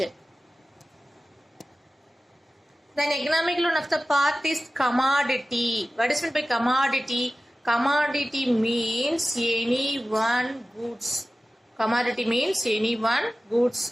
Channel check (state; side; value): normal; both; correlation 0.96